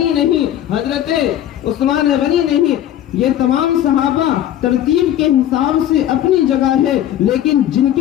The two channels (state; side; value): quieter; right; 11.6 dB